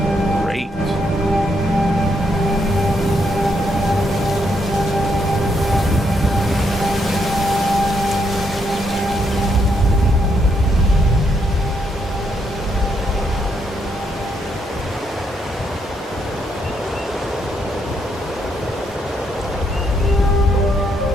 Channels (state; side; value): normal; both; correlation 0.76